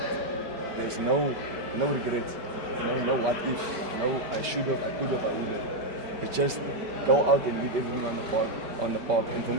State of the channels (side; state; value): left; late; 5.2 ms